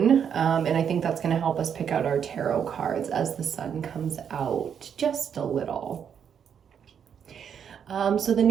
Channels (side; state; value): left; quieter; 7.9 dB